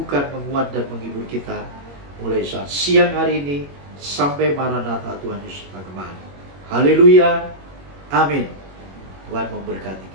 menguat, dan menghibur kita mulai saat siang hari ini sampai Maranatha Tuhan Yesus kembali. Haleluya, amin. Tuhan memberkati.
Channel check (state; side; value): late; left; 21 ms